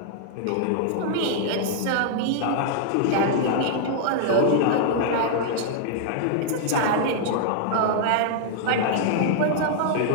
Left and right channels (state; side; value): different; both; correlation -0.01